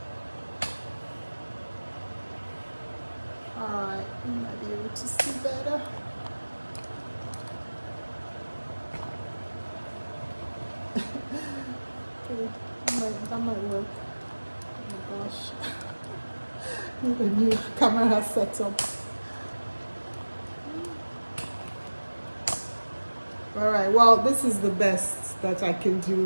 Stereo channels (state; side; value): inverted; both; correlation -1.00